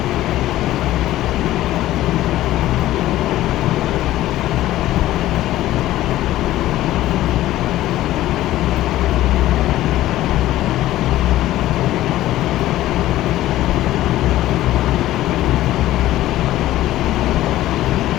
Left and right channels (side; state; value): right; quieter; 14.9 dB